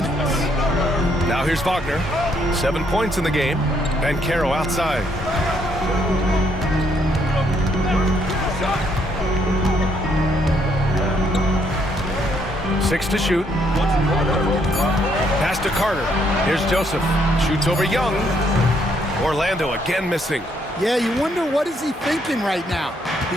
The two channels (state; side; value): normal; both; correlation 0.71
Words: Now here's Wagner. 7 points in the game. Banchero outside. Six to shoot. Pass to Carter. Here's Joseph. Shoots over Young. Orlando again missing. Yeah, you wonder what is he thinking right now.